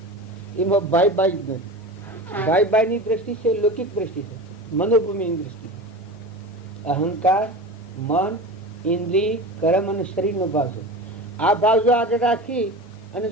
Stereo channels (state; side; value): normal; both; correlation 0.30